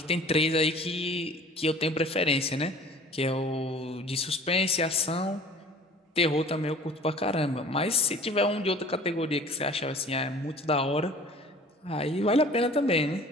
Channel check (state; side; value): normal; both; correlation 0.46